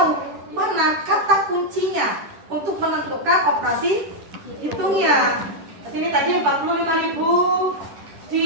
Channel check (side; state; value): left; late; 10 ms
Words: mana kata kuncinya untuk menentukan operasi hitungnya. Ini tadi 45.000